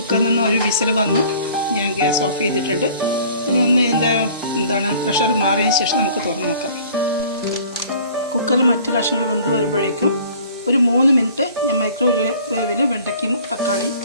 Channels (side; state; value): both; inverted; correlation -0.50